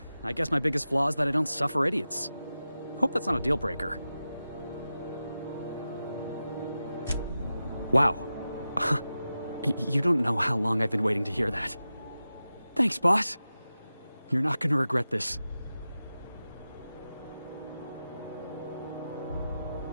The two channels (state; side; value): inverted; both; correlation -0.93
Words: I guess my biggest flaw is that I don't suffer idiots. Hope that's not a deal breaker. Wow. You don't know how long I've been waiting to hear that. Thanks, boss. You're not gonna regret this.